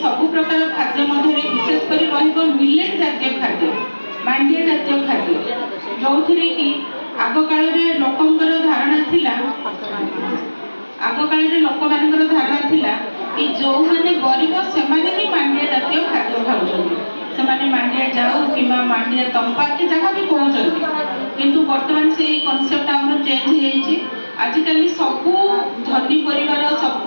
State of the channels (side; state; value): both; inverted; correlation -1.00